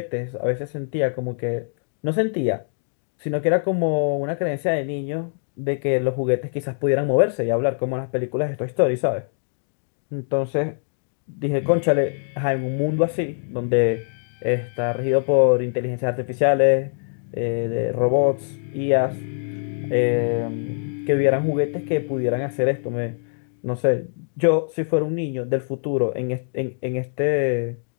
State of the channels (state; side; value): silent; right; digital silence